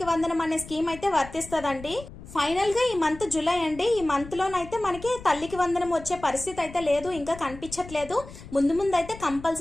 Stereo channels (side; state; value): left; noise; rumble, 15 dB below the sound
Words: వందనం అనే స్కీమ్ అయితే వర్తిస్తుందండి. ఫైనల్ గా ఈ మంత్ జూలై అండి, ఈ మంత్ లోనైతే మనకి తల్లికి వందనం వచ్చే పరిస్థితి అయితే లేదు, ఇంకా కనిపించట్లేదు. ముందు అయితే